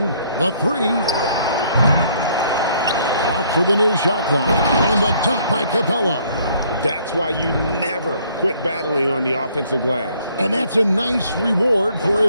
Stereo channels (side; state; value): both; inverted; correlation -0.63